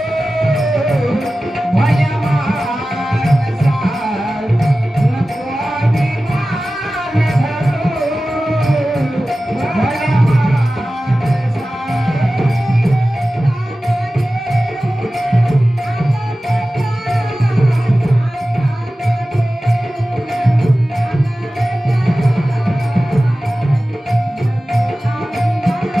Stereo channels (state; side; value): normal; both; correlation 0.95